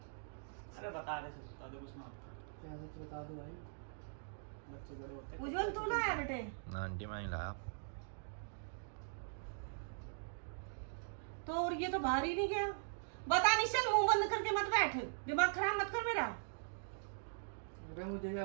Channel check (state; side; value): silent; left; digital silence